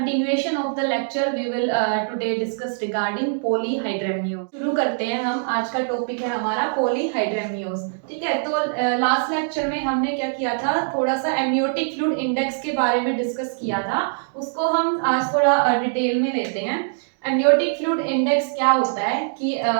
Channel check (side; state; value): left; silent; digital silence